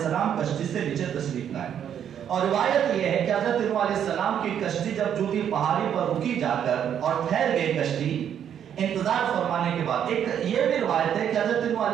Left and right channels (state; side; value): quieter; left; 9.1 dB